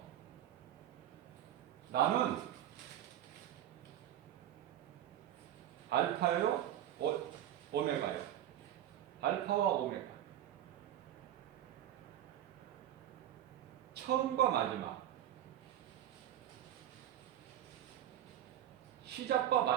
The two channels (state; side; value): quieter; left; 11.7 dB